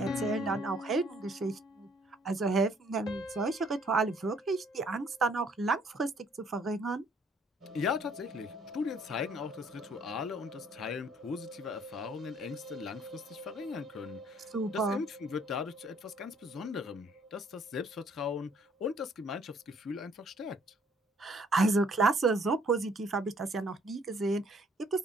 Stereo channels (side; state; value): both; normal; correlation 0.62